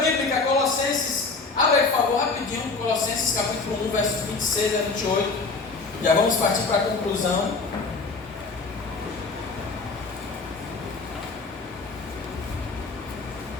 Colossenses, abre aí por favor rapidinho, Colossenses capítulo 1, versos 26 a 28. Já vamos partir para a conclusão.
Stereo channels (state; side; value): quieter; right; 4.1 dB